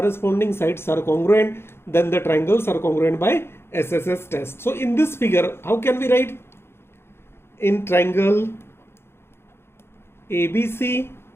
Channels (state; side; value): late; right; 0.12 ms